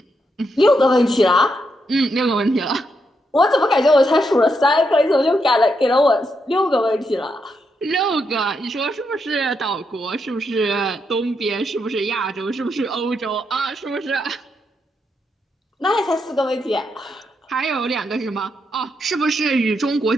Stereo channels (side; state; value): both; normal; correlation 0.81